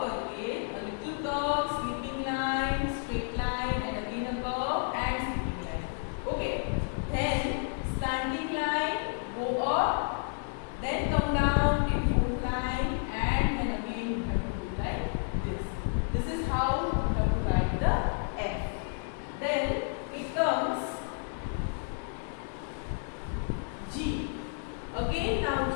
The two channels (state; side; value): silent; right; 57 dB below the other